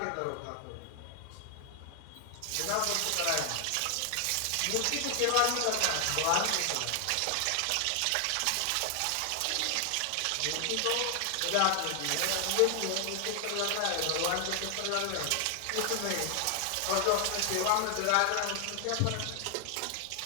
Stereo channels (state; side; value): different; both; correlation 0.00